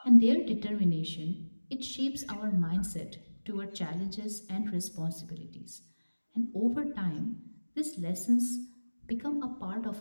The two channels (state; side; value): inverted; both; correlation -1.00